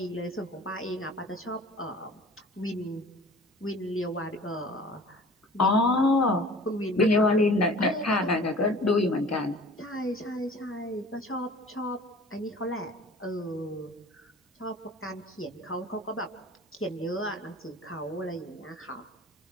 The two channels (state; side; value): normal; both; correlation 0.45